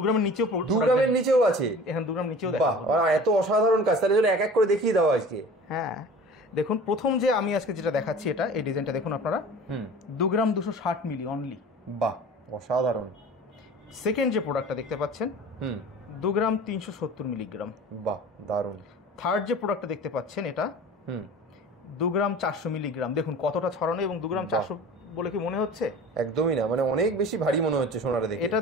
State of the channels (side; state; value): both; normal; correlation 0.41